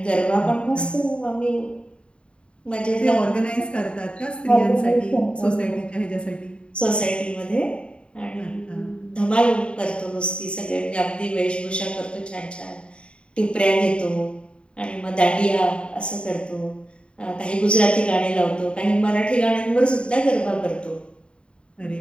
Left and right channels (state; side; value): late; right; 0.055 ms